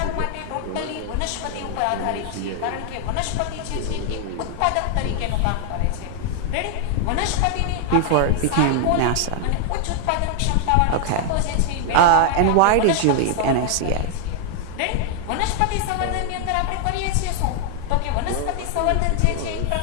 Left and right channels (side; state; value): both; different; correlation 0.00